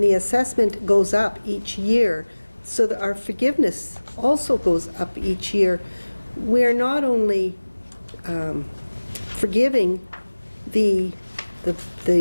the assessment goes up each year, so that our forgiveness also goes up each year. We're not only forgiving the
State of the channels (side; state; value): both; inverted; correlation -1.00